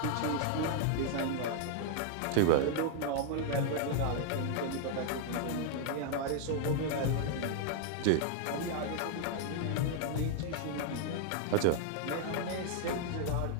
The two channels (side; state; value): both; different; correlation 0.00